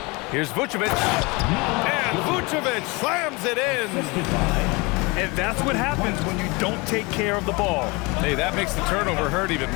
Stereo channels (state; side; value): quieter; right; 26.4 dB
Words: Here's Vucevic. And Vucevic slams it in. And that's what happens when you don't take care of the ball. Hey, that makes the turnover hurt even